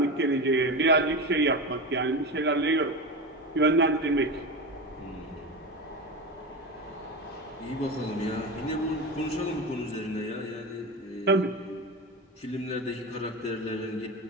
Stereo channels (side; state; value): both; normal; correlation 0.22